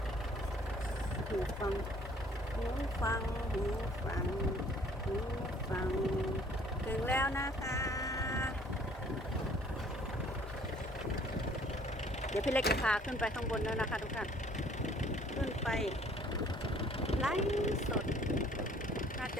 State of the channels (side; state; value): both; normal; correlation 0.57